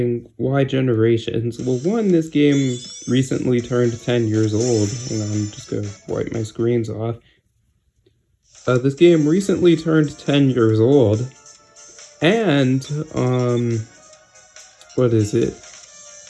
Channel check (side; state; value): both; identical; correlation 1.00